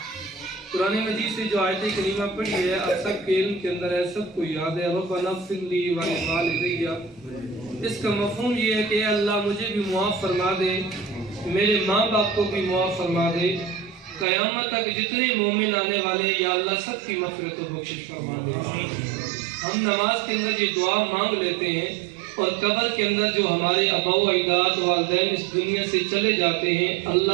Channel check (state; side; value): drops out; left; at 14.2 s